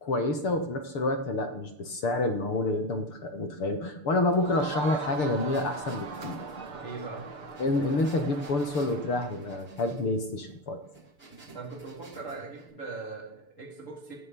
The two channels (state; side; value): late; right; 6.8 ms